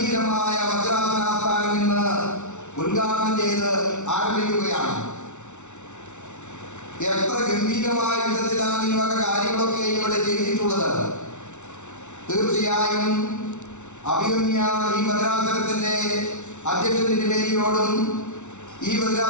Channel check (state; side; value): late; right; 0.83 ms